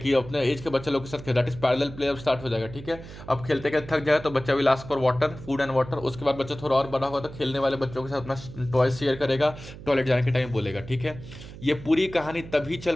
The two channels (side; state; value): right; noise; hum, 14 dB below the sound